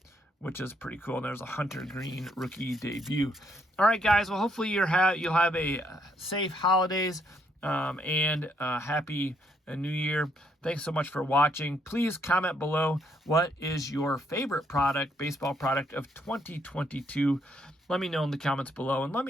which is pretty cool. And there's a Hunter Green rookie debut. All right, guys, well, hopefully you'll have a safe holidays and happy New Year. Thanks so much for watching. Please comment below, what is your favorite product, baseball product of 2022? Let me know in the comments below, and let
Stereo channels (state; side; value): normal; both; correlation 0.72